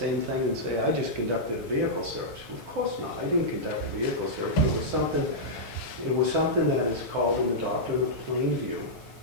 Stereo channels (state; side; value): normal; both; correlation -0.10